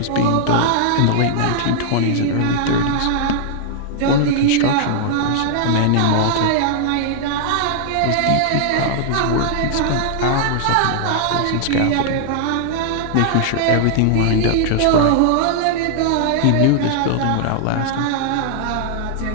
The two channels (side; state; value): both; different; correlation -0.01